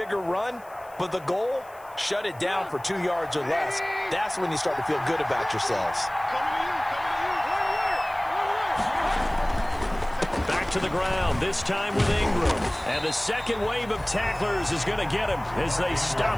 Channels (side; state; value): left; noise; hiss, 26 dB below the sound